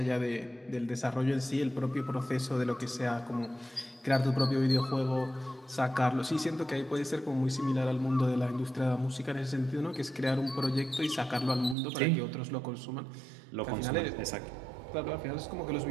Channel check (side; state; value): left; drops out; at 11.8 s